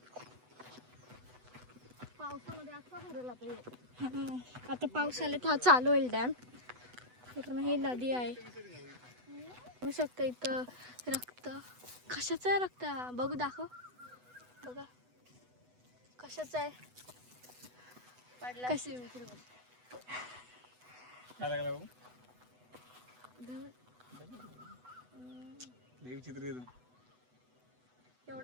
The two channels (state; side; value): late; left; 8.0 ms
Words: पावसामध्ये असा भरला पाहिजे. आता पावसाळ्यात हा चालू होईल डॅम्प. पूर्ण ही नदी आहे. बघू शकता इथं रक्त. कशाचं आहे रक्त? बघू दाखव. बघा कशाचं आहे. कशी काय लागला भाऊ? विचित्र येतो.